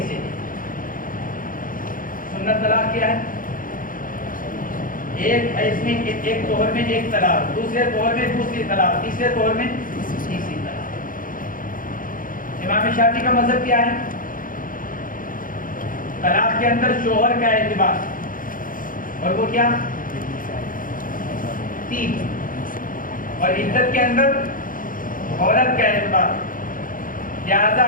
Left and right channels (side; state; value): right; late; 0.40 ms